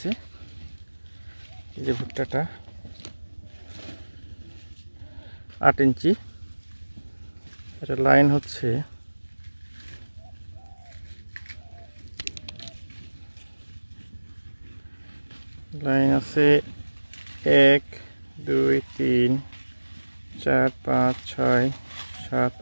এই যে ভুট্টাটা 8 ইঞ্চি। এটা লাইন হচ্ছে লাইন আছে 1 2 3 4 5 6 7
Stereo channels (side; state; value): both; inverted; correlation -1.00